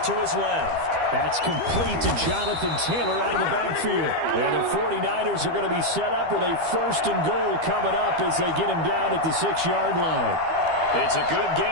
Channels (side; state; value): left; late; 12 ms